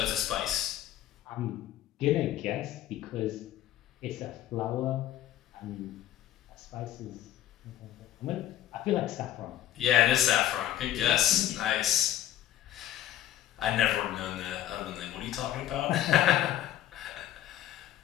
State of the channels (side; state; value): right; quieter; 12.6 dB